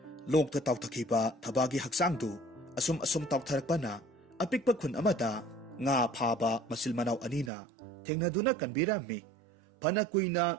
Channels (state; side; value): drops out; left; at 7.5 s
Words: ꯂꯣꯛꯇ ꯇꯥꯎꯊꯈꯤꯕ ꯊꯕꯥꯒꯤ ꯍꯛꯆꯥꯡꯗꯨ ꯑꯁꯨꯝ ꯑꯁꯨꯝ ꯇꯥꯎꯊꯔꯛꯄꯅ ꯑꯄꯤꯛꯄ ꯈꯨꯟ ꯑꯃꯗ ꯉꯥ ꯐꯥꯕ ꯃꯆꯤꯜ ꯃꯅꯥꯎ ꯑꯅꯤꯅ ꯊꯦꯡꯅꯗꯨꯅ ꯀꯟꯕꯤꯔꯝꯃꯤ꯫ ꯐꯅ ꯀꯨꯏꯅ